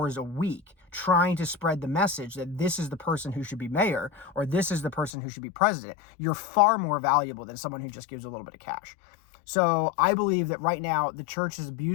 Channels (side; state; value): right; drops out; at 5.1 s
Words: a week, trying to spread the message that this is the person who should be mayor, or this is the person who should be president, you're far more valuable than someone who just gives a little bit of cash. So I believe that right now the church has